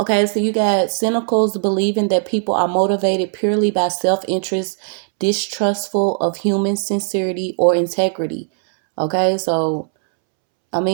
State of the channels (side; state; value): left; silent; 67 dB below the other